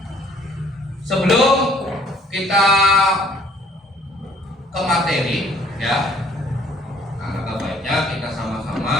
Sebelum kita ke materi ya, alangkah baiknya kita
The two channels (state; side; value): normal; both; correlation 0.59